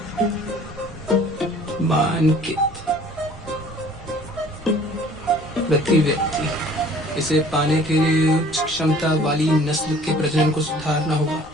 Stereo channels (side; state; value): both; normal; correlation 0.52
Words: मानकित प्रति व्यक्ति। इसे पाने के लिए उच्च क्षमता वाली नस्ल के प्रजनन को सुधारना होगा।